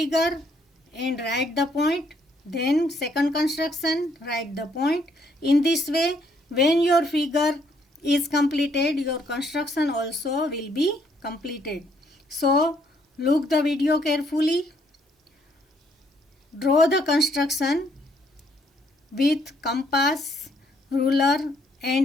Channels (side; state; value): both; normal; correlation 0.69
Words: and write the point, then second construction, write the point. In this way, when your figure is completed, your construction also will be completed. So, look the video carefully. Draw the construction with compass, ruler